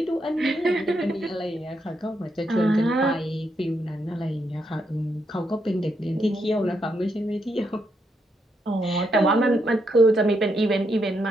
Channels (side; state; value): both; normal; correlation 0.79